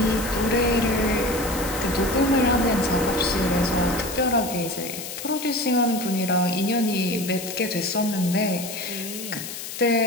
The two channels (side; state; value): left; noise; hiss, 9 dB below the sound